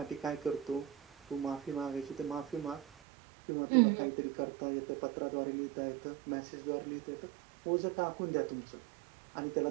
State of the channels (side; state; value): left; drops out; at 2.9 s